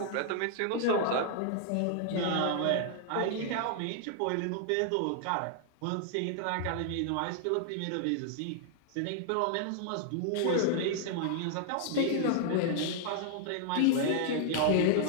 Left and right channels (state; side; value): different; both; correlation 0.00